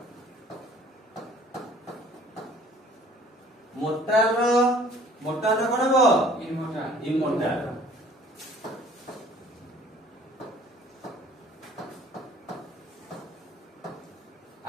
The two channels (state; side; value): normal; both; correlation 0.53